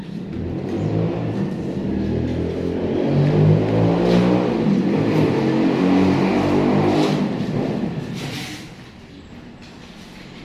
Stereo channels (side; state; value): both; identical; correlation 1.00